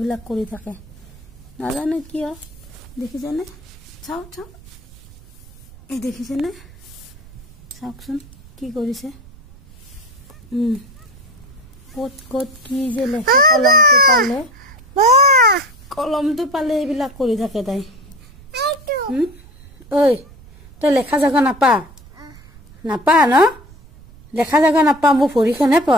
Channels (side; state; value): right; noise; rumble, 22 dB below the sound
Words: কৰি থাকে নাজানো কিয় দেখিছেনে চাও চাও এই দেখিছেনে চাওকচোন কি কৰিছে কত কত কি যে লেখে কলমটো পালে এইবিলাক কৰি থাকে তাই ঐ তই লেখা জাগা নাপা নাপা ন লেখা জাগা নাপা মোৰ ভৰিখনহে